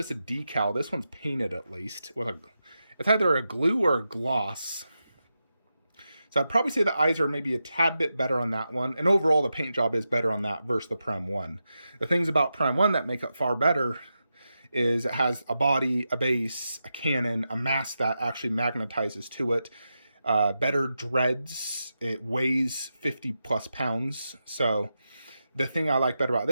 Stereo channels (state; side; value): inverted; both; correlation -0.89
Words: a decal. This one's painted at least. It's either a glue or a gloss. So I'd probably say the eyes are maybe a tad bit better on that one. And overall, the paint job is better on that versus the Prem 1. The things about Prem 1 that make it far better is it has a body, a base, a cannon, a mask that actually magnetizes to it. Better dreads. It weighs 50 plus pounds. So the thing I like better about